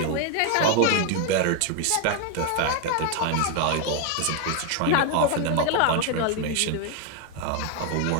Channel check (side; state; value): both; different; correlation 0.01